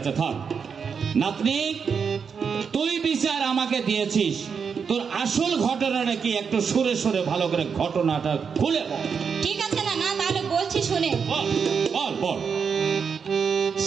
থাক। নাতনি, তুই বিচার আমাকে দিয়েছিস, তোর আসল ঘটনাটা কি একটু সুরে সুরে ভালো করে ঘটনাটা খুলে বল। ঠিক আছে নানা, তাহলে বলছি শুনে। বল বল।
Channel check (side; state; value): left; quieter; 6.2 dB